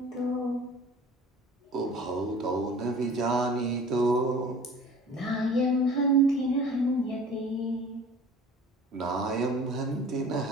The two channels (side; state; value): both; normal; correlation 0.45